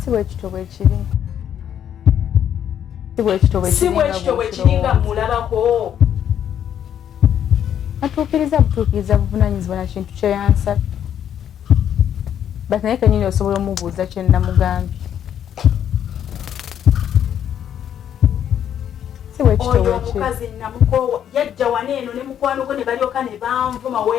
bwe kito bwe kiri. Si bwe kito bwe kiri nga mulabako. Butuukiriza buvunaanyizibwa na kintu kye yansaba. Bati naye kennyini osobola omubuuza kye namugambye. Si bwe kito bwe kiri. Oyo omukazi namukoowa yajja waneeno ne mukwano gwe ne balyoka ne banvuma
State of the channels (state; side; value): quieter; right; 9.6 dB